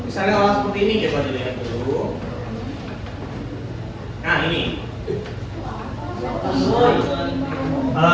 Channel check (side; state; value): both; identical; correlation 1.00